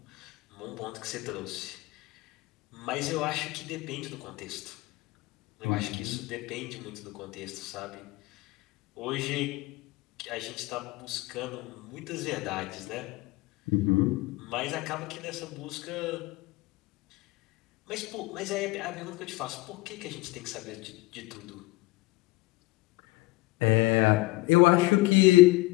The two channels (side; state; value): right; quieter; 21.1 dB